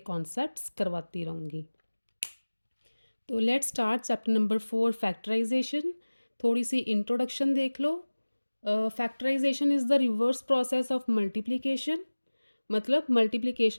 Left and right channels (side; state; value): both; inverted; correlation -1.00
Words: कॉन्सेप्ट्स करवाती रहूँगी। तो let's start chapter number 4 factorisation. थोड़ी सी इंट्रोडक्शन देख लो। Factorisation is the reverse process of multiplication, मतलब